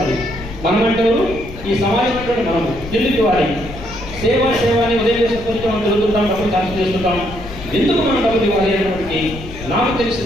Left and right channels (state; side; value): noise; left; rumble, 13 dB below the sound